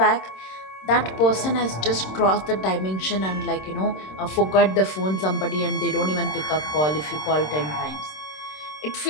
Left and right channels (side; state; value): right; late; 26 ms